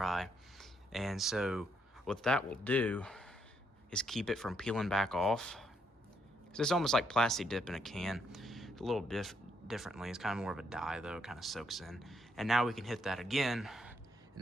And so what that will do is keep it from peeling back off. So it's almost like plastic dip in a can, a little differently. It's kind of more of a dye though, it kind of soaks in. And now we can hit that again, and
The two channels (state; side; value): normal; both; correlation 0.75